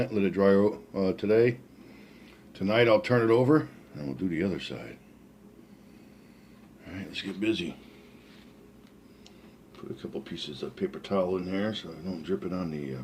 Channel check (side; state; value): both; identical; correlation 1.00